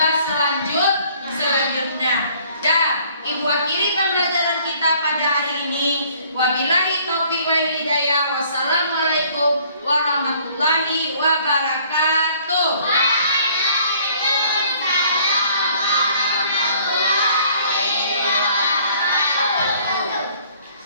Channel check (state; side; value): inverted; both; correlation -0.59